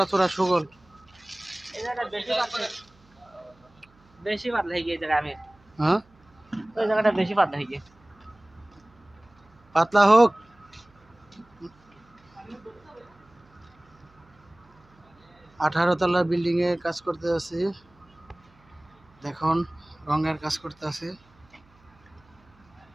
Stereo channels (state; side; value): noise; right; hum, 30 dB below the sound